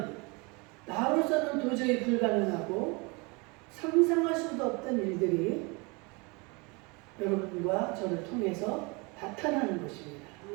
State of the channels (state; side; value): quieter; left; 28.5 dB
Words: 나로서는 도저히 불가능하고 상상할 수도 없던 일들이 여러분과 저를 통해서 나타나는 것입니다.